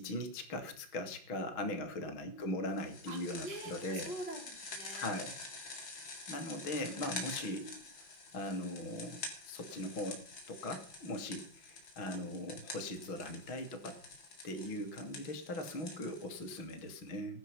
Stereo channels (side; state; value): right; late; 5.8 ms